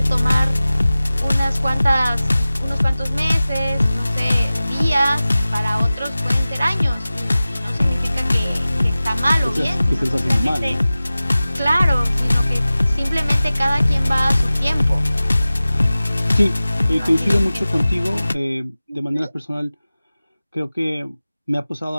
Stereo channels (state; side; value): inverted; both; correlation -0.97